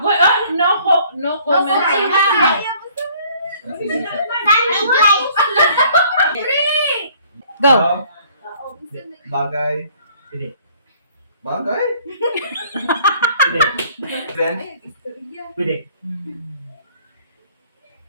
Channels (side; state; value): both; inverted; correlation -0.58